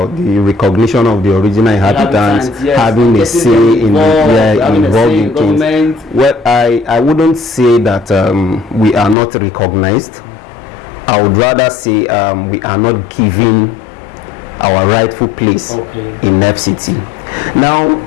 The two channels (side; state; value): right; drops out; at 9.2 s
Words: the recognition of the original inhabitants yes, having a say in involved in things. Well, I wouldn't say that we are not recognized. I would rather say we are not given our rightful place in FCT. Now,